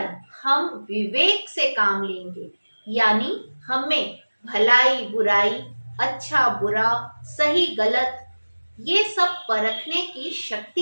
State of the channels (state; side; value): inverted; both; correlation -1.00